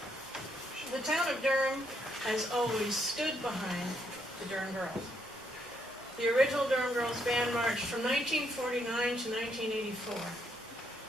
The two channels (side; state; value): both; normal; correlation 0.74